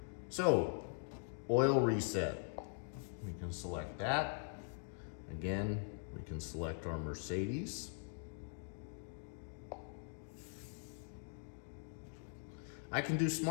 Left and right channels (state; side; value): silent; right; digital silence